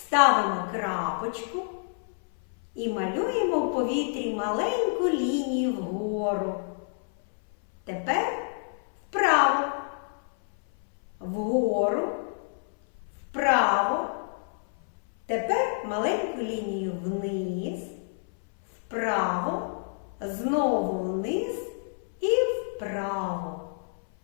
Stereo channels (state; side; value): silent; right; 59 dB below the other